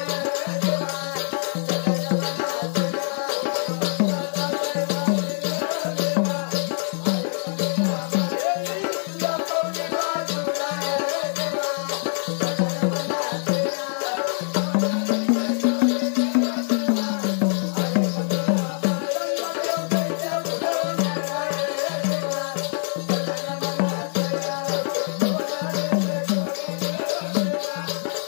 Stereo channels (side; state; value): right; silent; 55 dB below the other